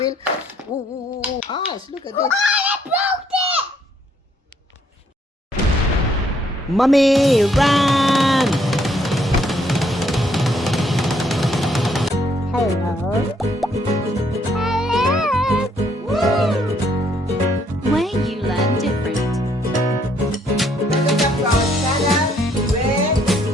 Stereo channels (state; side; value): normal; both; correlation 0.68